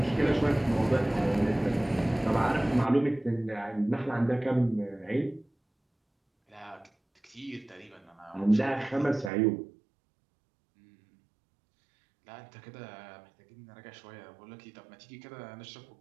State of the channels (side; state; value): left; drops out; at 9.3 s